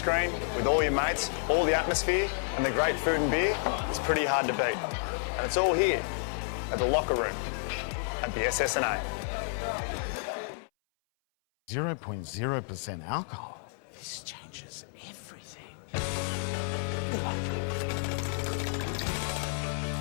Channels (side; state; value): right; silent; 57 dB below the other